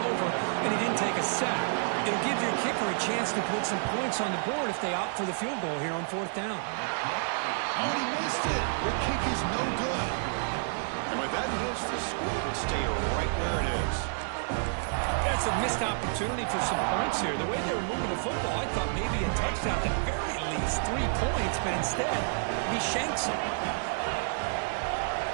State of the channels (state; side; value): silent; left; digital silence